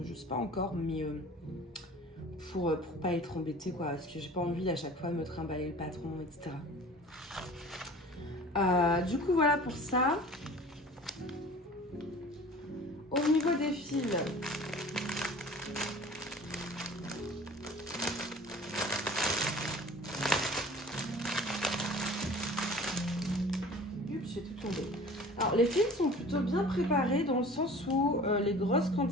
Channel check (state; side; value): normal; both; correlation 0.43